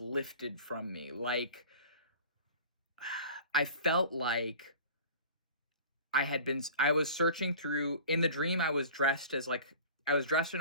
lifted from me. Like, I felt like I was searching through, in the dream, I was dressed in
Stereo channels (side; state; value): both; inverted; correlation -0.41